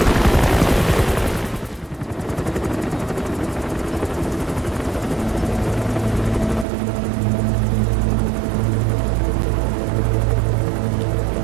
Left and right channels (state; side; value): drops out; left; at 6.7 s